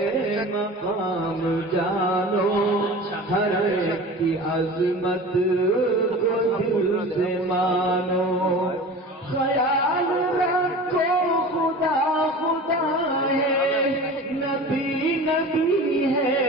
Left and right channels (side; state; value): both; normal; correlation 0.36